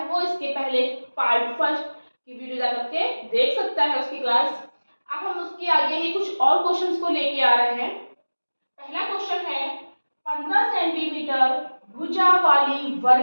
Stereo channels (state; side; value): inverted; both; correlation -1.00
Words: वो इसके पहले पार्ट फर्स्ट की वीडियो जा करके देख सकता है उसकी क्लास। अब हम उसके आगे ही कुछ और क्वेश्चंस को लेके आ रहे हैं। पहला क्वेश्चन है 15 सेंटीमीटर भुजा वाली